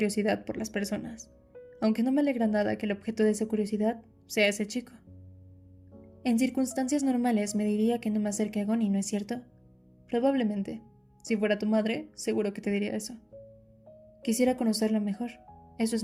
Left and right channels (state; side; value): identical; both; correlation 1.00